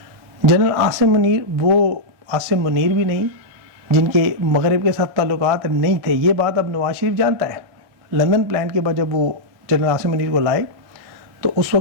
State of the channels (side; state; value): left; late; 1.6 ms